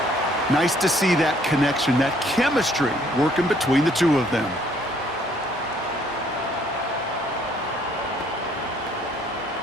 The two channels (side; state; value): both; normal; correlation 0.63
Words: Nice to see that connection, that chemistry working between the two of them.